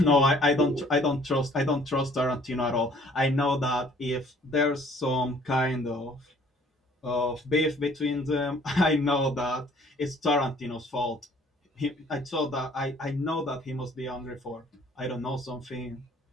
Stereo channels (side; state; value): both; normal; correlation 0.57